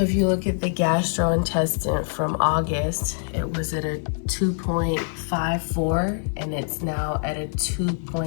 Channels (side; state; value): right; silent; 62 dB below the other